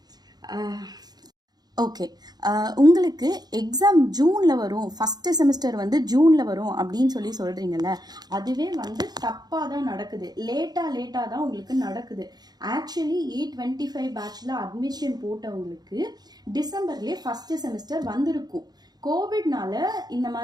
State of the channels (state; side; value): late; left; 0.19 ms